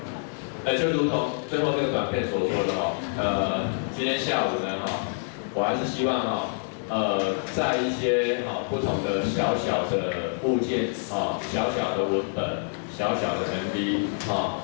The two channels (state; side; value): silent; right; digital silence